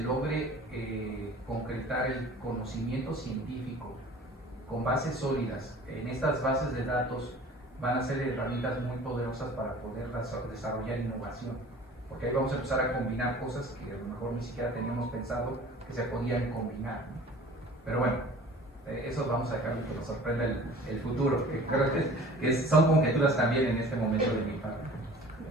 logre concretar el conocimiento científico con bases sólidas, en estas bases de datos van a ser herramientas muy poderosas para poder desarrollar innovación, porque ahí vamos a empezar a combinar cosas que a lo mejor ni siquiera teníamos pensado que se podían combinar, ¿no? Pero bueno, eso vamos a dejarle que nos sorprenda el futuro, que creo que son conjeturas también en este momento de mi parte.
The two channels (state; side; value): normal; both; correlation 0.45